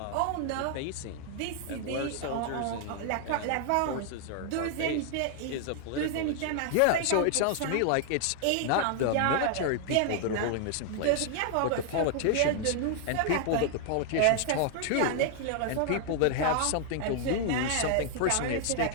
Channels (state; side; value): different; both; correlation 0.00